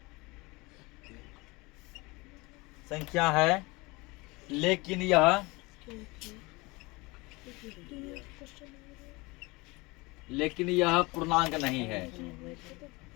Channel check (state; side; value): quieter; right; 24.4 dB